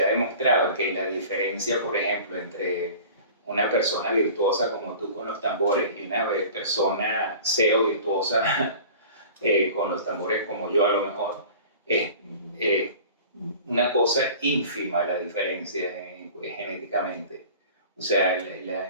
ha demostrado que la diferencia, por ejemplo, entre una persona virtuosa como tú con los tambores y una persona cero virtuosa con los tambores como yo a lo mejor, es una cosa ínfima la diferencia genéticamente. O sea,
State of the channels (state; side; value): inverted; both; correlation -0.42